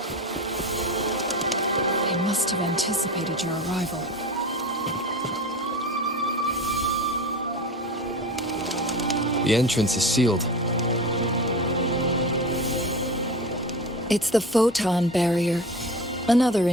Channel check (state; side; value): normal; both; correlation 0.31